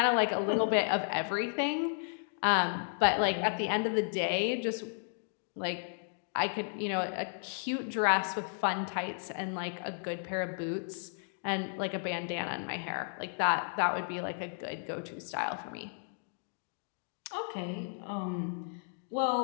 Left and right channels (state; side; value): silent; right; digital silence